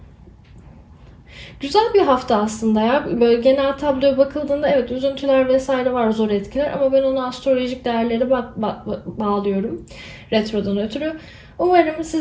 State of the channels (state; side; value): identical; both; correlation 1.00